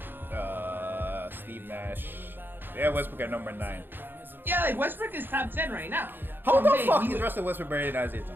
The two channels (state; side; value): late; left; 0.097 ms